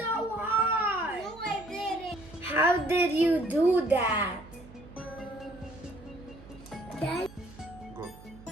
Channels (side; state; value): right; noise; hum, 20 dB below the sound